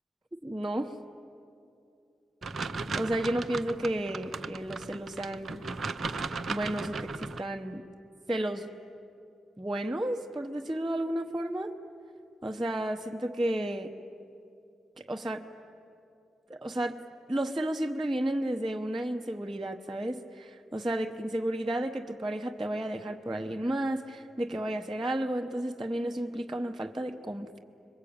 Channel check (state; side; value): normal; both; correlation 0.90